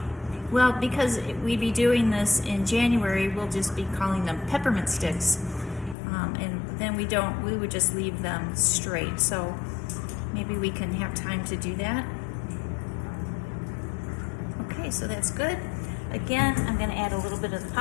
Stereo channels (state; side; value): drops out; right; at 6.0 s